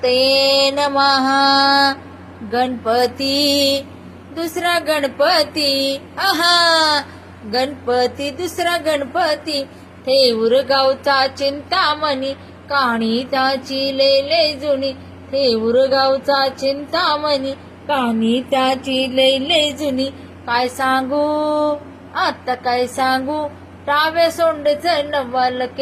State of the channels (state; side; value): identical; both; correlation 1.00